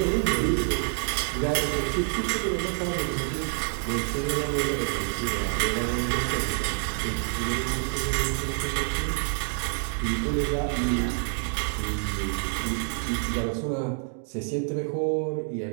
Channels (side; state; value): left; silent; 60 dB below the other